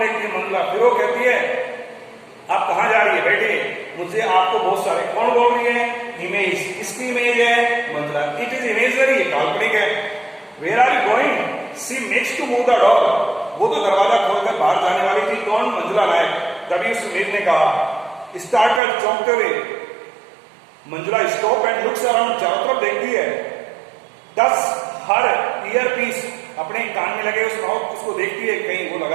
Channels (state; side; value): drops out; left; at 18.8 s